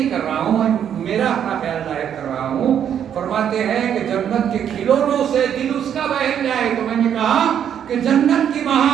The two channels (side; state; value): left; quieter; 9.1 dB